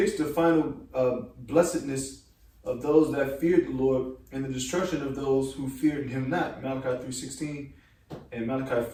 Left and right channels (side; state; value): both; identical; correlation 1.00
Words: the final blessedness of those that feared the Lord and the destruction of those who feared him not. Malachi 3:16 and Malachi